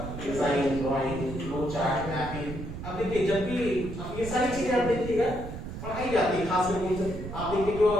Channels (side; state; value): right; noise; rumble, 9 dB below the sound